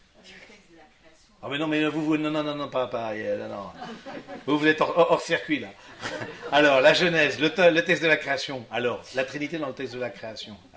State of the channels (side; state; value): both; identical; correlation 1.00